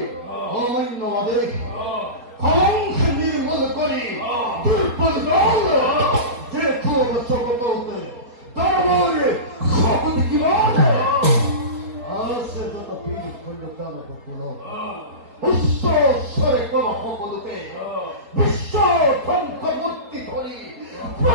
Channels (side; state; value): left; late; 4.2 ms